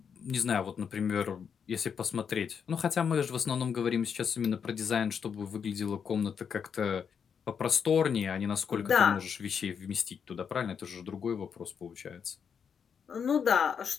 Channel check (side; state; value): right; quieter; 7.0 dB